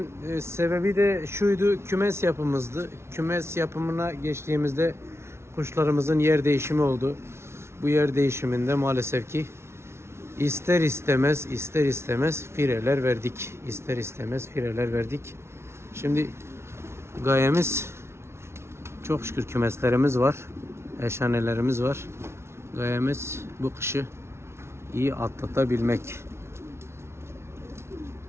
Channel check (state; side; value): late; left; 0.13 ms